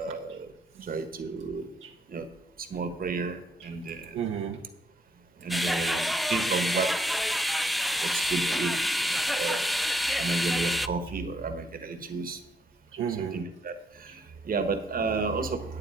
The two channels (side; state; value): both; normal; correlation 0.71